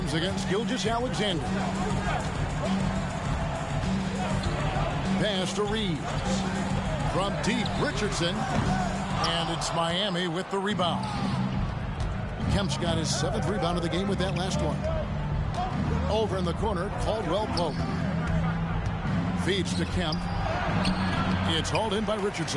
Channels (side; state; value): both; identical; correlation 1.00